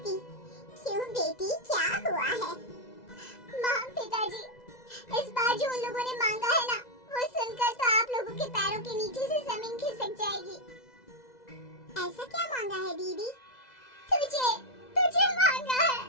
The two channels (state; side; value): late; right; 2.0 ms